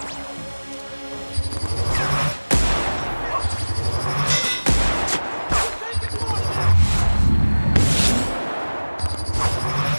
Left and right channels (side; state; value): both; inverted; correlation -1.00